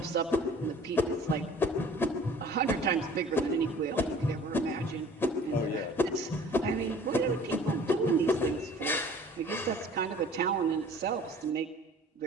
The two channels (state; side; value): normal; both; correlation 0.49